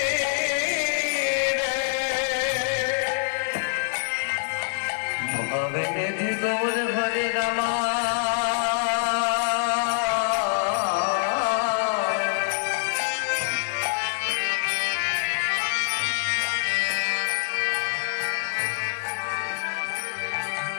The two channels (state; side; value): silent; right; digital silence